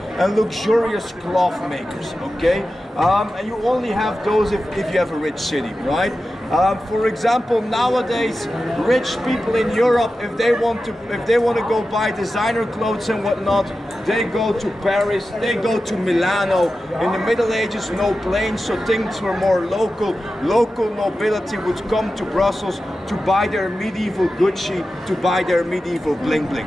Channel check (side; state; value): both; normal; correlation 0.93